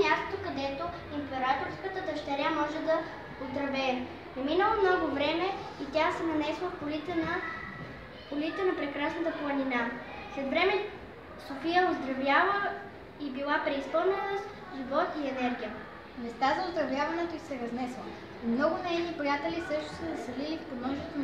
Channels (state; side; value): identical; both; correlation 1.00